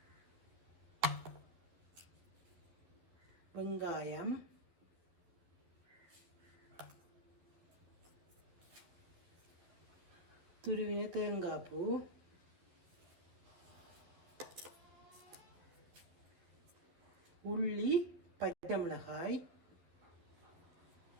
வெங்காயம், துருவின தேங்காய் பூ, உள்ளி, பச்சை மிளகாய்,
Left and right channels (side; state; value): left; late; 11 ms